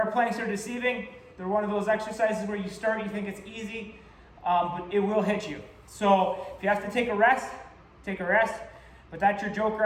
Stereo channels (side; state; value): both; identical; correlation 1.00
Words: planks are deceiving. They're one of those exercises where you start, you think it's easy. but it will hit you. So if you have to take a rest, take a rest. But that's your joker